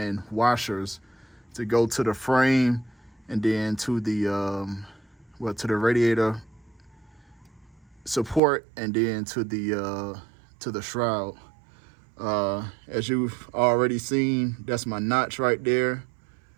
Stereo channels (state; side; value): drops out; left; at 8.4 s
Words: washers to go to the frame, and then to the to the radiator support, and then to the shroud. As you've already seen, that's my notch right there.